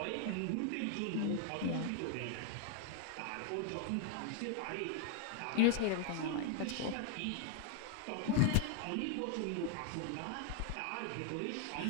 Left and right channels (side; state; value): both; different; correlation 0.00